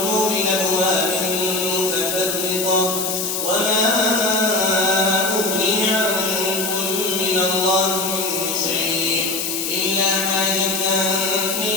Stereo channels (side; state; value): left; noise; hiss, 2 dB below the sound